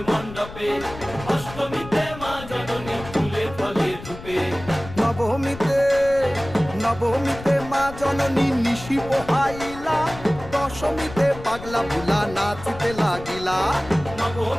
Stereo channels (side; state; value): left; noise; rumble, 14 dB below the sound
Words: মণ্ডপে, অষ্টমীতে মা জননী ফুলে ফলে ধূপে, নবমীতে মা জননী নিশি পোহাইলা, দশমীতে পাগলা ভুলা নাচিতে লাগিলা,